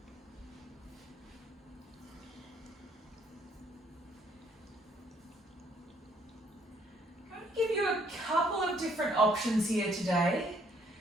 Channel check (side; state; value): both; normal; correlation 0.65